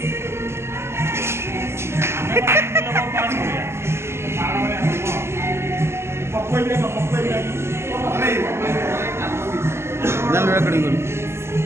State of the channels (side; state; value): left; late; 0.12 ms